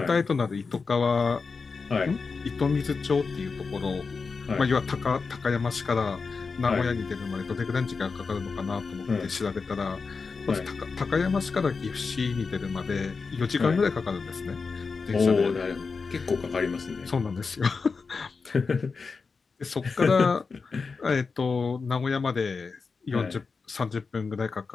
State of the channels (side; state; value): right; quieter; 4.7 dB